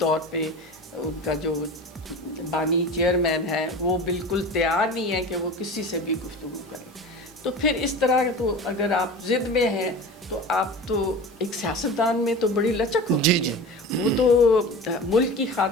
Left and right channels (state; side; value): normal; both; correlation 0.34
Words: پہ ان کا جو بانی چیئرمین ہے وہ بالکل تیار نہیں ہے کہ وہ کسی سے بھی گفتگو کریں. تو پھر اس طرح تو اگر آپ ضد میں ہیں تو آپ تو ایک سیاستدان میں تو بڑی لچک ہوتی ہے. وہ تو ملک کی